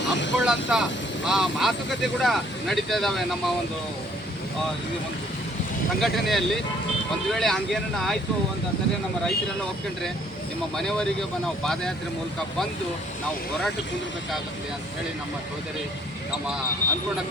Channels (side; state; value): both; normal; correlation 0.62